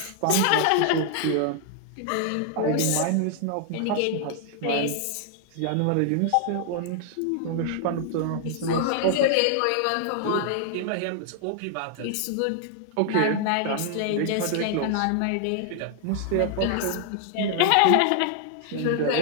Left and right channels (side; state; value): both; different; correlation 0.00